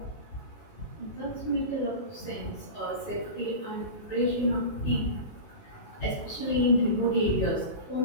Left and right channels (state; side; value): late; right; 19 ms